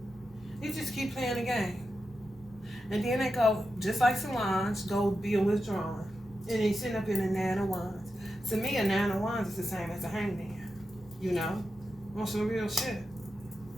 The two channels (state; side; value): normal; both; correlation 0.89